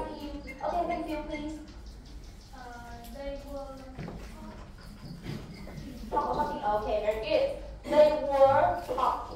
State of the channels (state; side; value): identical; both; correlation 1.00